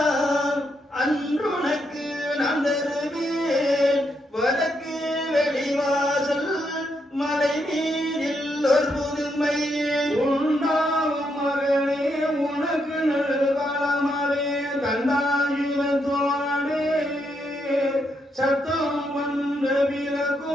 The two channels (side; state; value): both; normal; correlation 0.79